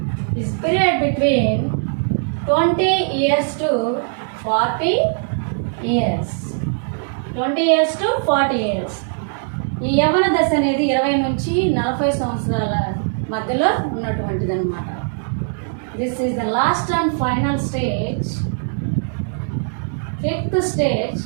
This period between 20 years to 40 years. 20 years to 40 years. ఈ యవ్వన దశ అనేది 20 నుంచి 40 సంవత్సరాల మధ్యలో ఉన్నటువంటిది అనమాట. This is the last and final stage. Fifth stage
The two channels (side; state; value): left; silent; digital silence